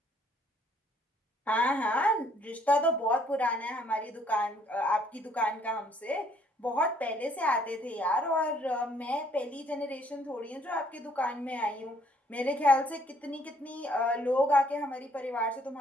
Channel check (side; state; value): both; normal; correlation 0.65